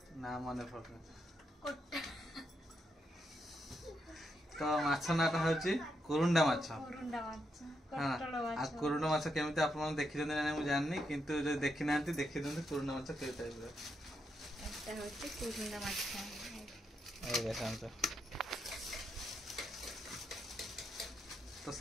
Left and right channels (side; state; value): both; normal; correlation 0.81